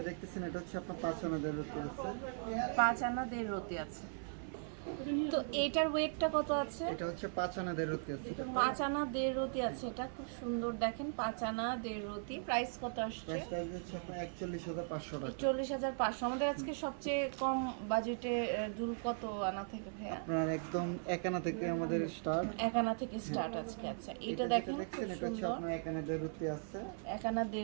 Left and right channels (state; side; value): silent; left; 52 dB below the other